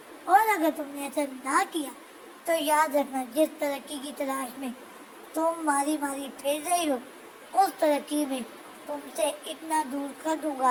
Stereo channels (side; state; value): both; identical; correlation 1.00